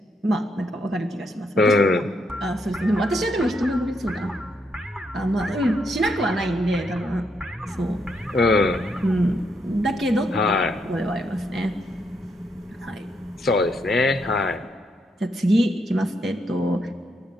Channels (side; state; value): both; normal; correlation 0.78